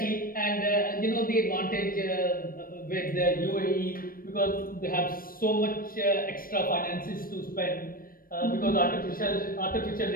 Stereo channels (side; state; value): right; late; 0.41 ms